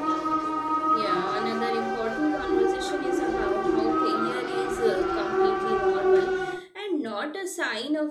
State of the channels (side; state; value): both; identical; correlation 1.00